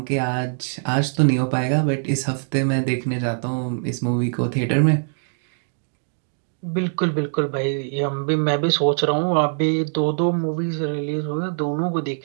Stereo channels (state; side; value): silent; left; digital silence